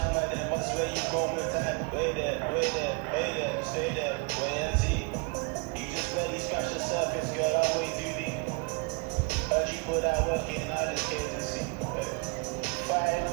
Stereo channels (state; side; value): quieter; left; 32.1 dB